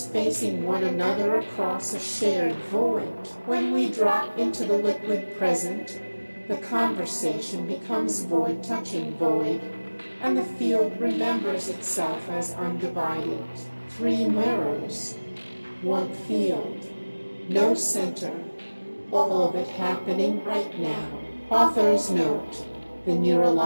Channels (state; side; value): inverted; both; correlation -1.00